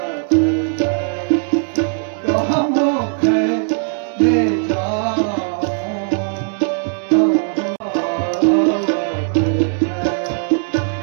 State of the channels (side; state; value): left; silent; digital silence